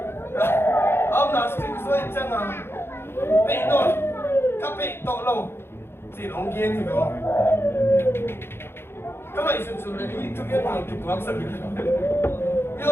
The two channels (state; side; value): late; right; 0.11 ms